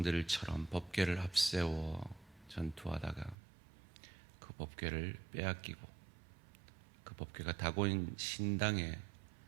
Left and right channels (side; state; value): left; drops out; at 3.4 s